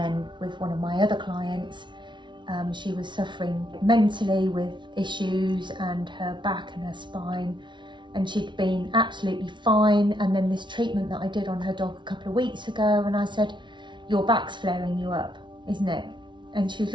with one of my other clients, she was suffering mentally with issues and her back and her spine, and she'd been absolutely fine. And then this treatment that I did on her dog a couple of weeks ago, and I said, your back's flaring you up, isn't it? And she was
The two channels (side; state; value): left; late; 0.23 ms